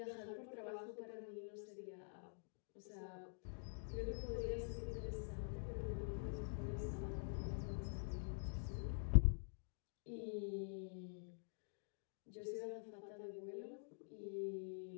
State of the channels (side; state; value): right; silent; digital silence